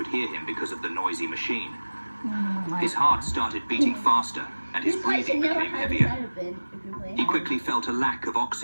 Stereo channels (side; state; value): both; inverted; correlation -1.00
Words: hear him because of the noisy machine. His heart started beating faster, and his breathing became heavier. He quickly felt a lack of